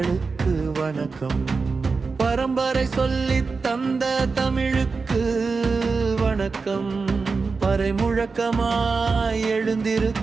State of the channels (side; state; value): left; quieter; 4.5 dB